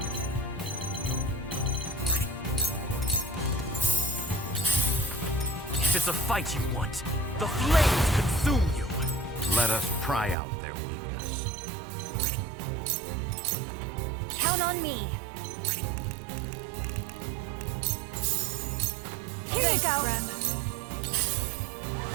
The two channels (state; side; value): drops out; left; at 10.4 s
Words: If it's a fight you want, the flames consume you! Let us pry out their weakness. Count on me. Here Thank you go. friend.